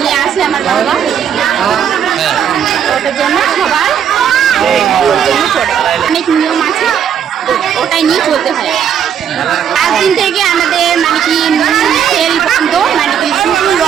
আসে আমার বাবা, ওটার জন্য সবার অনেক নিয়ম আছে, ওটাই নিয়ে চলতে হয়। 5 দিন থেকে আমাদের মানে কি তেল বন্ধ, মানে কি শুধু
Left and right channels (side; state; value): left; quieter; 8.5 dB